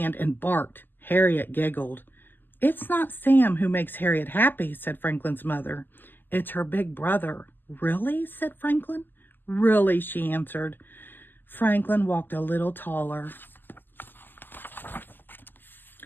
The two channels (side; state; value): right; late; 0.091 ms